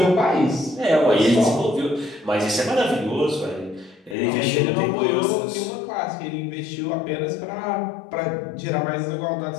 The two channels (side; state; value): right; drops out; at 4.2 s